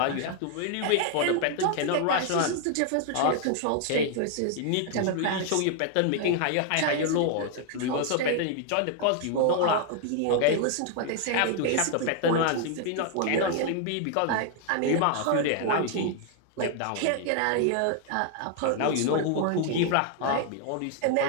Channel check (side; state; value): both; different; correlation 0.00